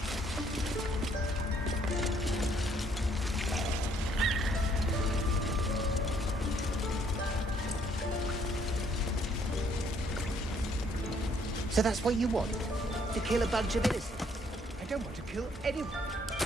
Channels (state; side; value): normal; both; correlation 0.66